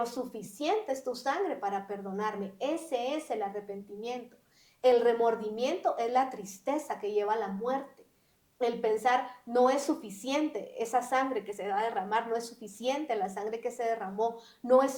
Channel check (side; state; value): both; identical; correlation 1.00